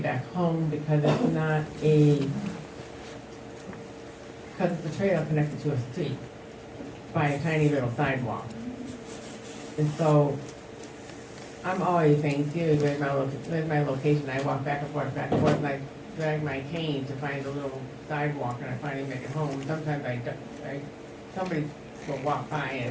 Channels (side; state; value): both; identical; correlation 1.00